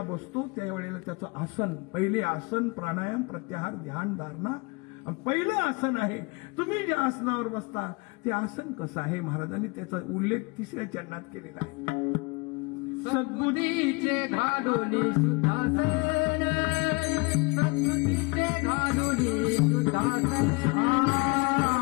बसतो त्यावेळेला त्याचं आसन पहिले आसन प्राणायाम प्रत्याहार ध्यान धारणा पहिलं आसन आहे तुम्ही ज्या आसनावर बसता ते आसन कसं आहे महाराजांनी त्याचा उल्लेख 3ऱ्या चरणात केलेला आहे सद्बुद्धीचे घालुनी सुधासन सद्बुद्धीचे घालुनी सुधासन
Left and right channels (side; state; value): right; quieter; 28.6 dB